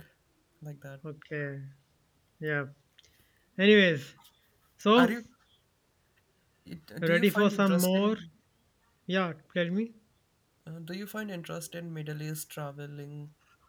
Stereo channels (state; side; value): identical; both; correlation 1.00